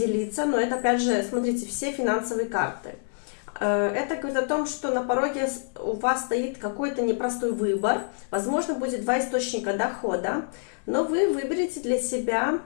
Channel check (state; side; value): silent; right; 61 dB below the other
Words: но это опять же, смотрите, все финансовые карты. Это говорит о том, что на пороге у вас стоит какой-то непростой выбор. Возможно, будет два источника дохода, но вы выберете для себя